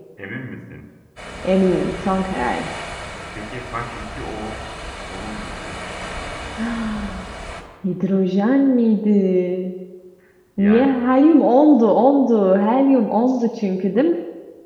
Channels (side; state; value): both; identical; correlation 1.00